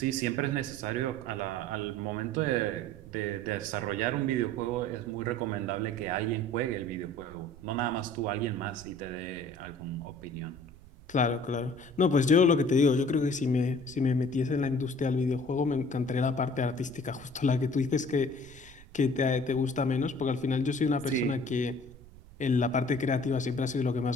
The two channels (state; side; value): noise; right; rumble, 21 dB below the sound